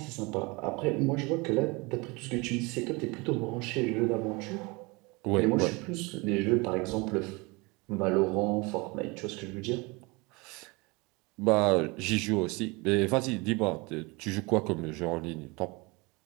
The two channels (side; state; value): left; quieter; 26.4 dB